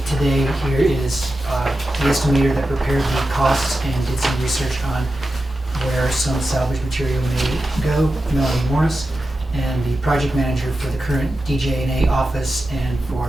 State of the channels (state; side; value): normal; both; correlation 0.91